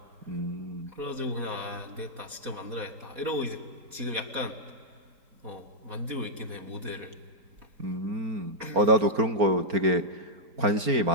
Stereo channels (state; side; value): late; left; 4.1 ms